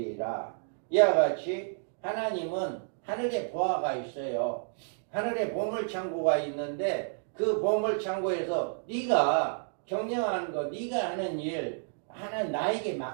이와 같이 하나님은 하늘에 보화가 있어요. 하늘에 보물창고가 있는데 그 보물창고에서 네가 경영하는 거, 네가 하는 일 하는 나에게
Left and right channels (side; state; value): left; silent; digital silence